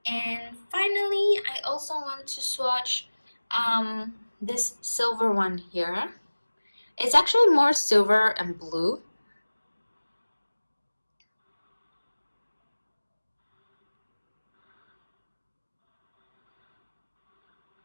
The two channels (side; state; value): both; inverted; correlation -1.00